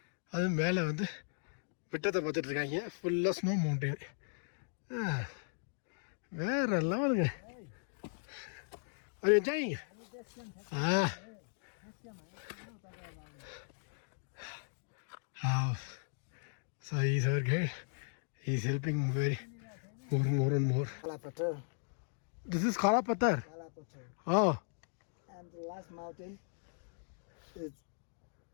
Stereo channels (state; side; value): silent; right; digital silence